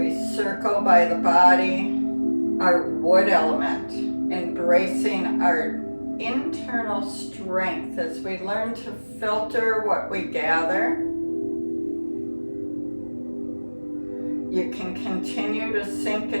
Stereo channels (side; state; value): both; inverted; correlation -1.00